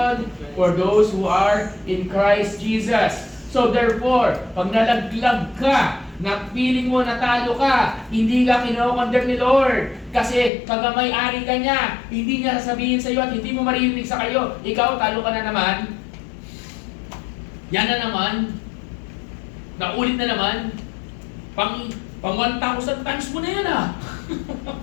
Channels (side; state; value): right; drops out; at 10.5 s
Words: for those who are in Christ Jesus. So therefore, pag nalaglag ka, na feeling mo natalo ka, hindi ka kinokondemn ni Lord. Kasi kagamay-ari ka niya, hindi niya sasabihin sa iyo at hindi mo maririnig sa kayo, ikaw talo ka na naman. Yan na naman. Naulit na naman. Pang 1,000 times mo na yan